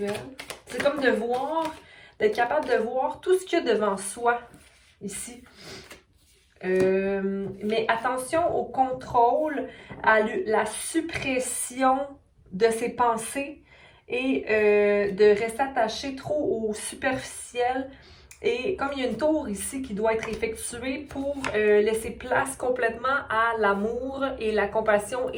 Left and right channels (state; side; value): identical; both; correlation 1.00